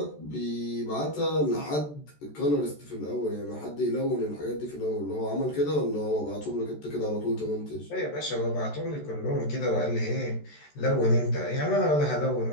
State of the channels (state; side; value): late; right; 14 ms